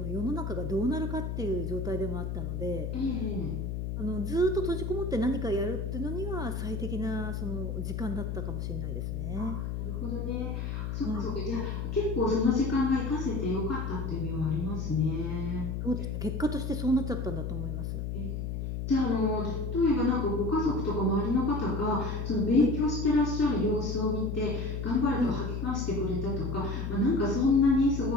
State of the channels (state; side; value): noise; left; hum, 3 dB below the sound